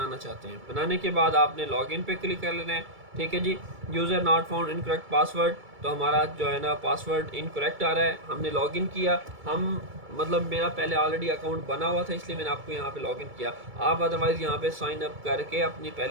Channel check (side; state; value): left; late; 2.3 ms